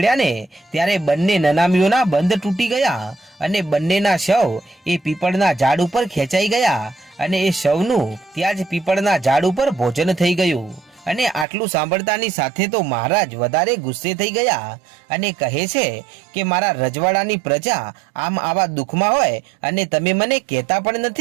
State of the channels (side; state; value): left; drops out; at 11.5 s